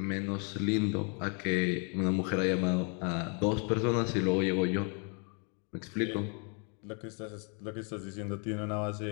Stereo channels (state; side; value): quieter; right; 38.0 dB